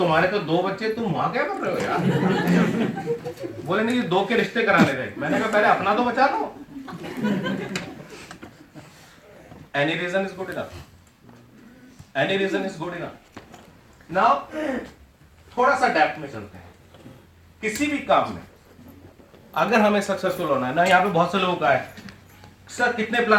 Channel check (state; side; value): identical; both; correlation 1.00